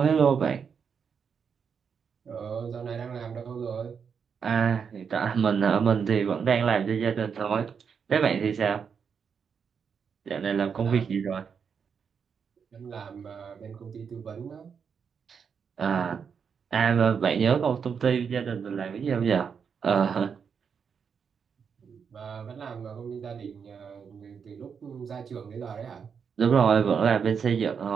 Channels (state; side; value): quieter; left; 6.6 dB